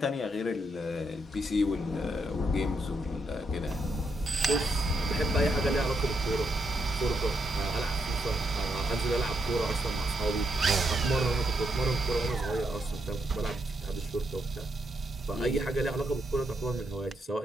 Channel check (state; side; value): normal; both; correlation 0.79